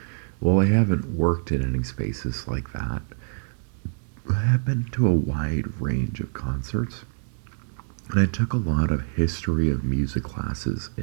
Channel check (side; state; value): left; silent; 61 dB below the other